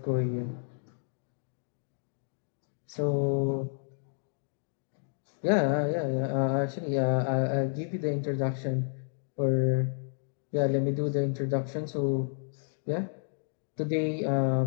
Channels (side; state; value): right; silent; digital silence